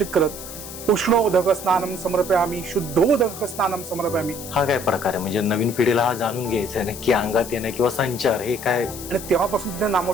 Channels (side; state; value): left; noise; hiss, 12 dB below the sound